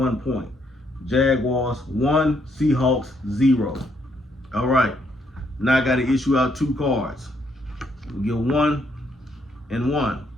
point. Jaguars 1, Seahawks 0. All right. Now I got to issue out 2 cards. We get 1 and 1.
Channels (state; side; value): normal; both; correlation 0.72